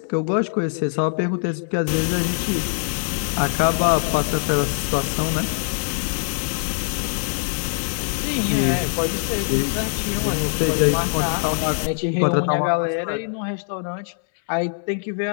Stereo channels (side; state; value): right; silent; 64 dB below the other